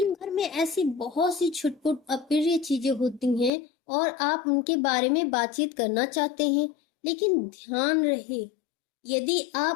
भर में ऐसी बहुत सी छुटपुट अप्रिय चीजें होती हैं और आप उनके बारे में बातचीत करना चाहते हैं, लेकिन ध्यान रहे, यदि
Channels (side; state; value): right; drops out; at 3.5 s